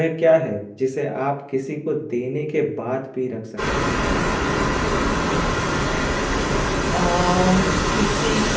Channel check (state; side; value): identical; both; correlation 1.00